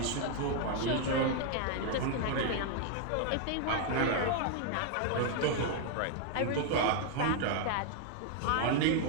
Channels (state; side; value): different; both; correlation 0.00